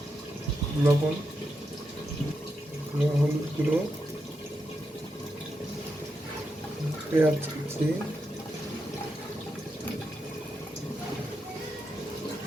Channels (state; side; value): normal; both; correlation 0.85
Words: লবণ, হলুদ গুঁড়ো, পেঁয়াজ কুচি,